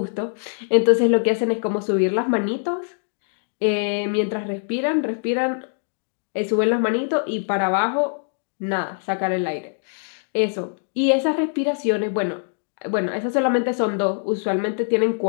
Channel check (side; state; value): right; silent; digital silence